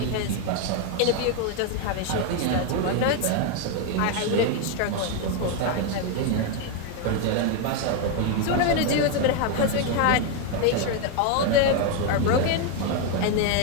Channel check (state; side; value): different; both; correlation 0.01